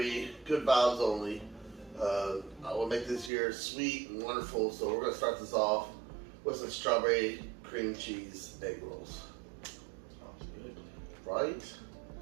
good vibes only. I will make this year sweet and wonderful, so we're going to start this off with some strawberry cream cheese egg rolls. Sounds good. Right?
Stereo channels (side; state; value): left; drops out; at 3.3 s